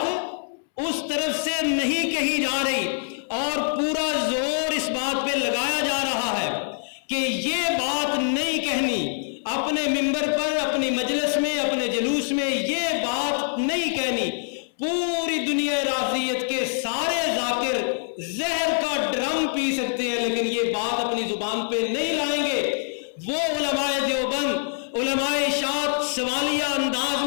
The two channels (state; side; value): silent; right; 62 dB below the other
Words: اس طرف سے نہیں کہی جا رہی اور پورا زور اس بات پہ لگایا جا رہا ہے کہ یہ بات نہیں کہنی، اپنے ممبر پر، اپنی مجلس میں، اپنے جلوس میں یہ بات نہیں کہنی۔ پوری دنیا رافضیت کے سارے ذاکر زہر کا ڈرم پی سکتے ہیں لیکن یہ بات اپنی زبان پہ نہیں لائیں گے۔ وہ علماء دیوبند، علماء اشاعت سوالیہ انداز